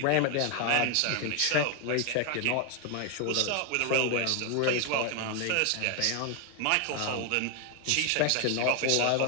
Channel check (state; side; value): different; both; correlation 0.00